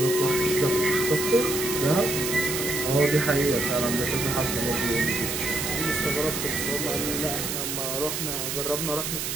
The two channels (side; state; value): right; noise; hiss, 3 dB below the sound